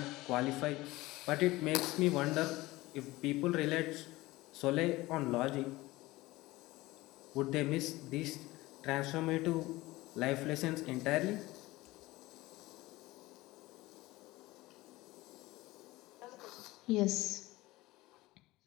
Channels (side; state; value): right; quieter; 19.4 dB